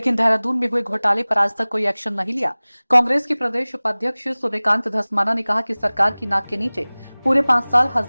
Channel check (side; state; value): both; inverted; correlation -1.00